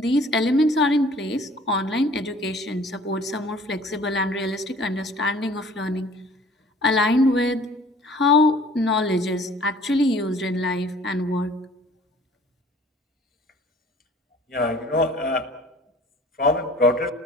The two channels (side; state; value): both; normal; correlation 0.51